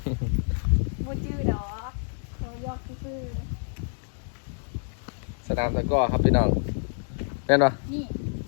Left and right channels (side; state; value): right; silent; digital silence